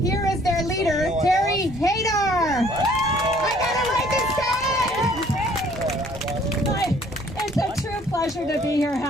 Here is their leader, Terry Hadar. I gotta write this down! It's a true pleasure to be here,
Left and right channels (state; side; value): normal; both; correlation 0.59